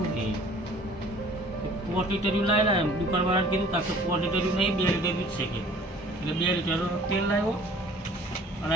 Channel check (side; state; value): both; normal; correlation 0.51